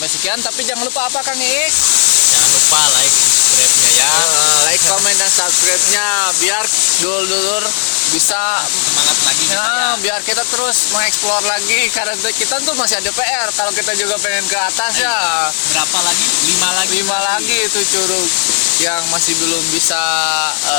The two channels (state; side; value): silent; right; digital silence